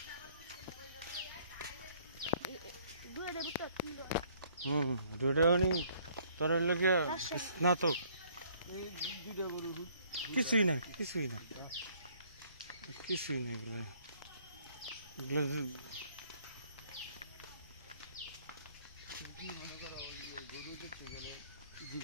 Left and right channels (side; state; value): both; inverted; correlation -0.61